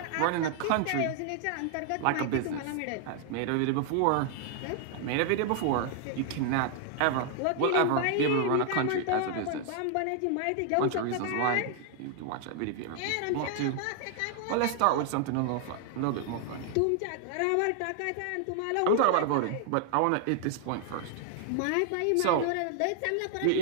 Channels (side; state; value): both; different; correlation 0.00